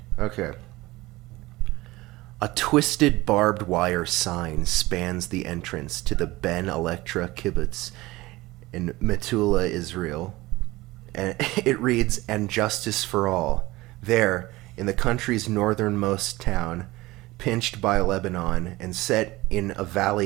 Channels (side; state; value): left; quieter; 19.6 dB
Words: Okay. A twisted barbed wire sign spans the entrance to the Ben Electra kibbutz in Metula, Israel. And it reads, "And justice for all. There, in the country's northernmost town, pinched by Lebanon and set in a